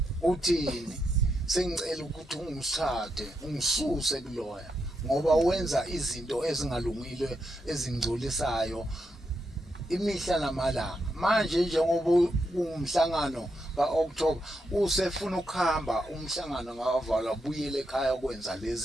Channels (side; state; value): both; normal; correlation 0.82